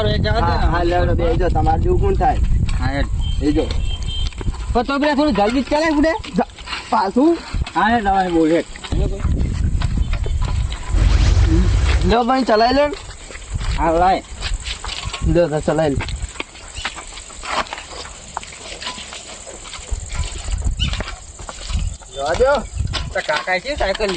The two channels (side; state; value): both; identical; correlation 1.00